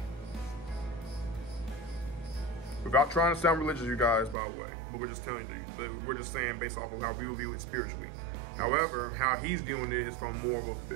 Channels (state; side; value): drops out; left; at 4.4 s